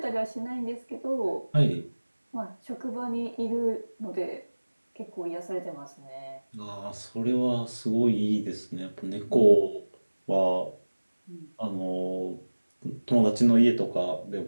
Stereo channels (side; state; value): both; inverted; correlation -1.00